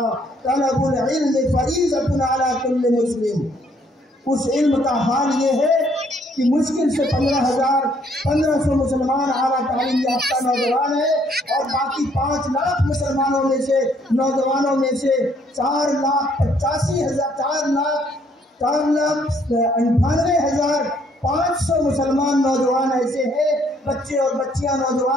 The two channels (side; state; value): both; normal; correlation 0.66